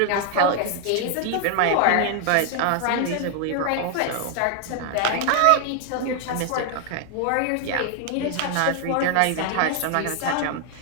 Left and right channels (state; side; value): different; both; correlation 0.00